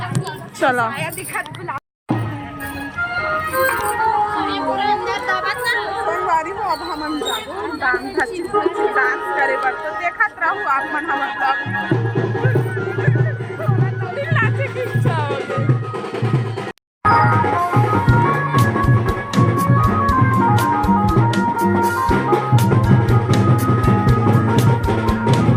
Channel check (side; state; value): both; identical; correlation 1.00